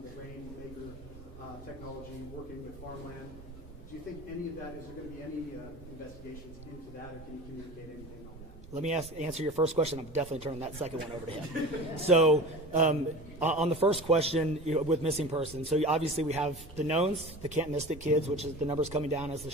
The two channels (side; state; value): both; normal; correlation 0.36